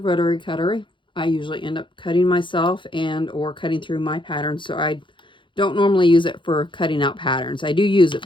cutter. I usually end up cutting myself and or cutting through my patterns, so I don't normally use it for cutting out patterns. I do use it,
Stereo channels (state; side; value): late; right; 0.24 ms